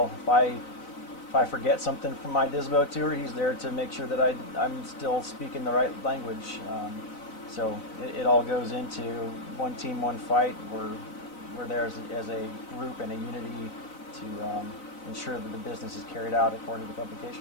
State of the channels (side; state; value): right; late; 4.0 ms